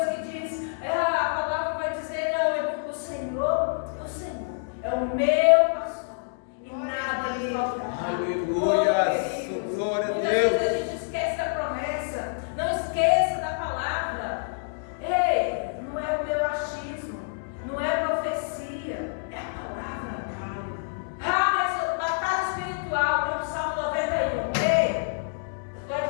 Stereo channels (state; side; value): silent; right; digital silence